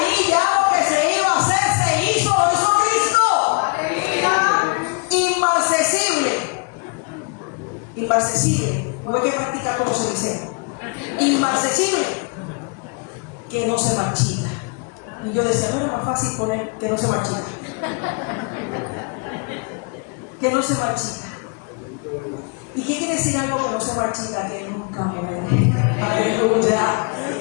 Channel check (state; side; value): quieter; right; 34.5 dB